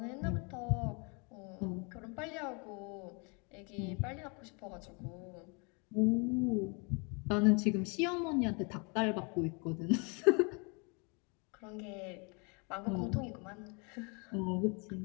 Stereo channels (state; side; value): quieter; right; 32.9 dB